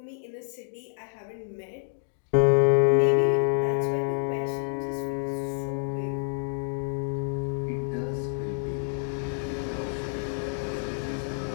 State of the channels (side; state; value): right; silent; digital silence